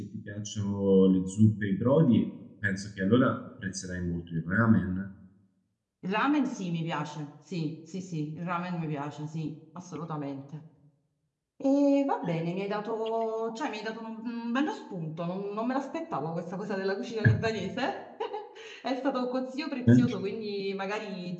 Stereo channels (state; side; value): identical; both; correlation 1.00